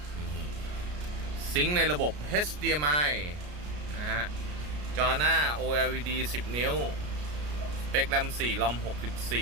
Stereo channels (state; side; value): late; left; 33 ms